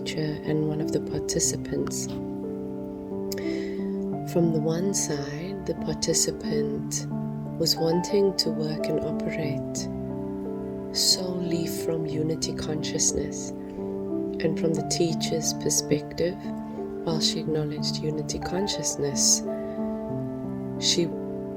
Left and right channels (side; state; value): both; identical; correlation 1.00